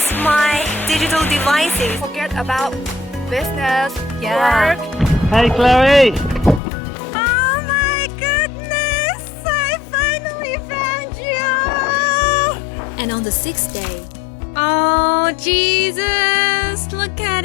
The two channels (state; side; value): drops out; right; at 6.6 s